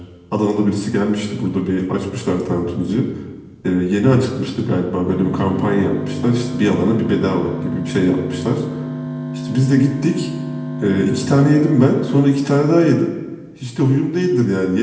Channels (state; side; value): identical; both; correlation 1.00